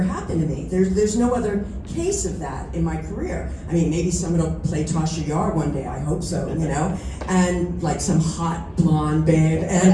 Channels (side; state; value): both; identical; correlation 1.00